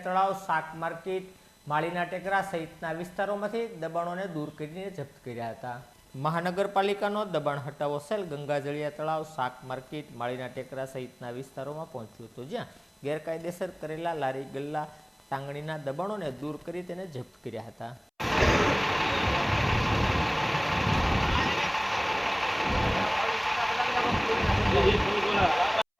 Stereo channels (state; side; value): identical; both; correlation 1.00